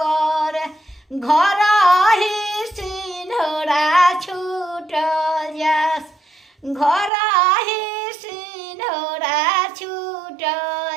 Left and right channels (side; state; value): left; drops out; at 7.1 s